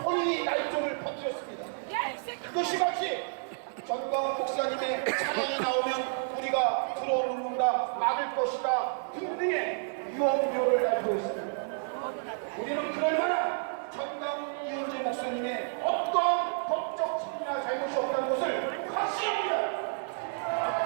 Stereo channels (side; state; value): left; silent; digital silence